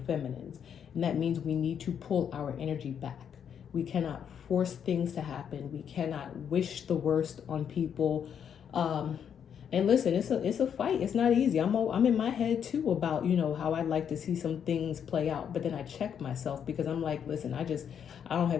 feminines. And that means we need to pull our energy back. We cannot force things to happen. We cannot wish the worst on people. And listen, it's a fight. It's not easy. I'm in my head too about, how I'd like to see some things play out. But then I check myself, because I'm like, listen, I don't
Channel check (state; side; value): quieter; right; 8.2 dB